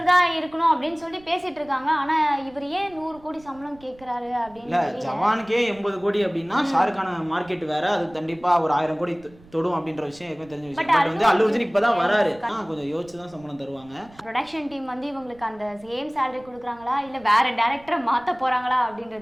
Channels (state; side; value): noise; right; rumble, 25 dB below the sound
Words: தான் இருக்கணும் அப்படின்னு சொல்லி பேசிட்டு இருக்காங்க. ஆனா இவர் ஏன் 100 கோடி சம்பளம் கேட்கிறாரு அப்படின்னு. ஜவானுக்கே 80 கோடி அப்படின்னா ஷாருக்கான மார்க்கெட் வேற, அது கண்டிப்பா ஒரு 1000 கோடி தொடும் அப்படின்ற விஷயம் ஏற்கனவே தெரிஞ்ச விஷயம். பட் வந்து அல்லு அர்ஜுன் இப்பதான் வராரு, கொஞ்சம் யோசிச்சு தான் சம்பளம் தருவாங்க. ப்ரொடக்ஷன் டீம் வந்து இவங்களுக்கு அந்த சேம் salary கொடுக்குறாங்களா இல்ல வேற டைரக்டரை மாத்த போறாங்களா